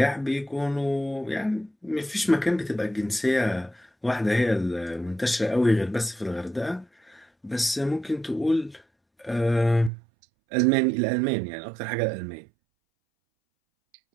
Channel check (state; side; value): drops out; left; at 9.9 s